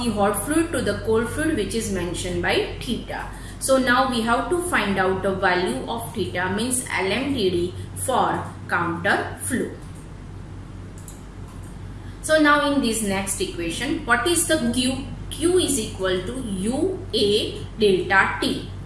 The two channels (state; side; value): identical; both; correlation 1.00